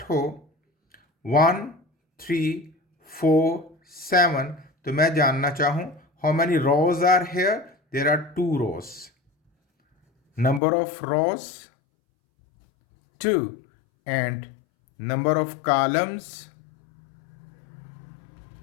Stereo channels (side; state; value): right; drops out; at 10.6 s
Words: हो 1, 3, 4, 7, तो मैं जानना चाहूं how many rows are here? There are 2 rows. Number of rows 2 and number of columns